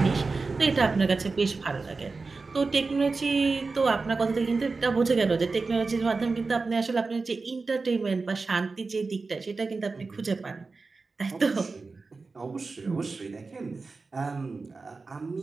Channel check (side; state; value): left; quieter; 4.0 dB